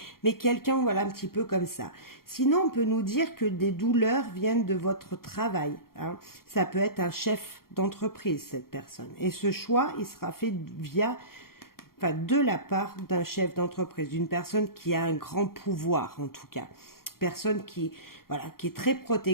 mais quelqu'un, voilà, un petit peu comme ça. Sinon, on peut nous dire que des douleurs viennent de votre travail. Hein. Ça peut être un chef d'entreprise, cette personne. Et ce choix, il sera fait de la part d'un chef d'entreprise, d'une personne qui a un grand pouvoir, en tout cas. Personne qui est très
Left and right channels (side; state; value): right; late; 0.93 ms